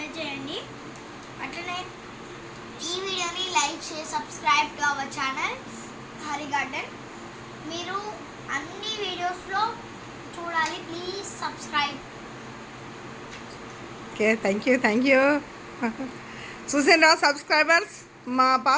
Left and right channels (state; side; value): identical; both; correlation 1.00